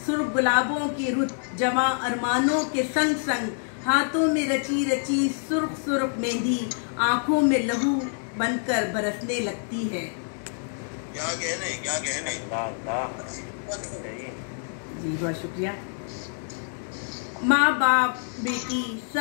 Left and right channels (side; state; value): right; silent; 61 dB below the other